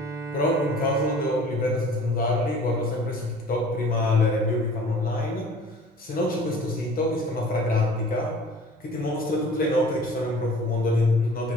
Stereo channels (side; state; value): both; normal; correlation 0.47